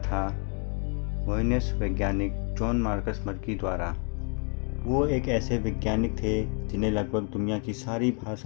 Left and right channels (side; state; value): right; quieter; 39.1 dB